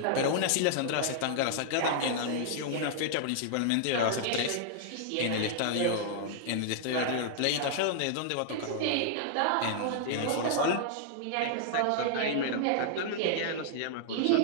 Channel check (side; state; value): both; different; correlation -0.01